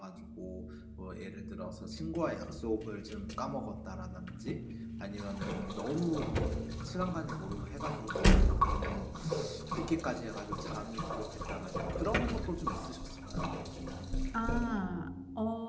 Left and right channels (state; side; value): identical; both; correlation 1.00